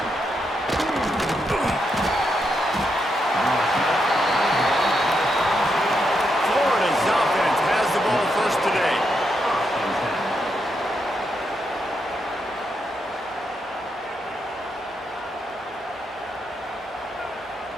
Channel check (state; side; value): normal; both; correlation 0.81